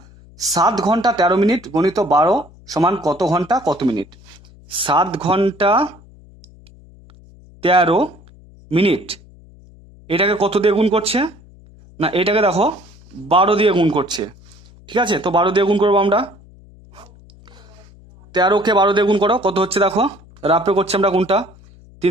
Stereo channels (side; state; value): left; noise; hum, 24 dB below the sound